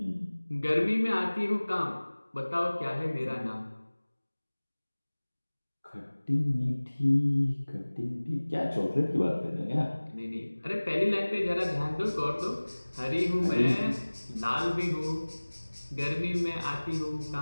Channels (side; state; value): both; inverted; correlation -1.00